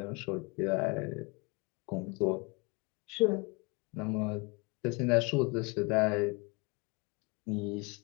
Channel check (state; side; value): quieter; right; 28.5 dB